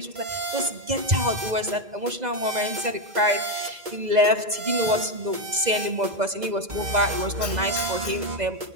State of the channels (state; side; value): late; left; 2.0 ms